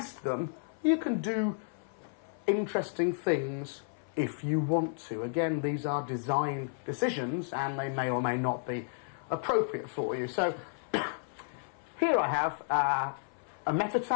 them. You can do interesting things if you want to. Again, these are design decisions, and they may or may not be appropriate for you. So here I have a meta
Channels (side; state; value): right; silent; 55 dB below the other